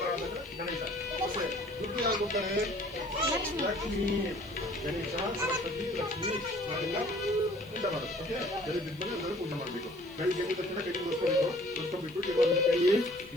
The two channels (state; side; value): noise; left; hiss, 26 dB below the sound